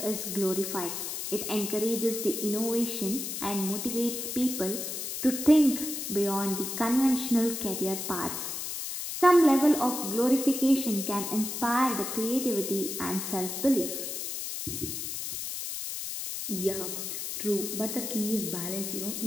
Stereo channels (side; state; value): left; noise; hiss, 5 dB below the sound